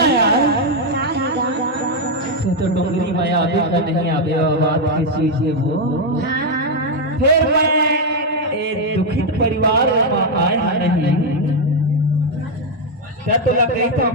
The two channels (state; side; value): normal; both; correlation 0.02